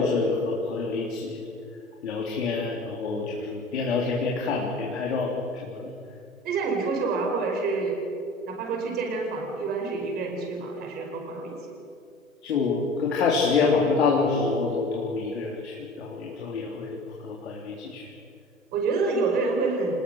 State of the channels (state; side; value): normal; both; correlation 0.41